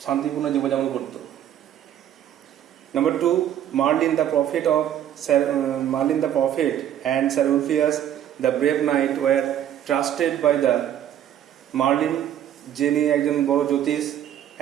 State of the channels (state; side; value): quieter; left; 10.7 dB